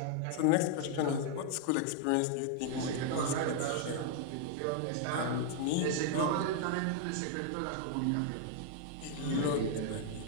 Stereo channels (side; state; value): both; different; correlation 0.00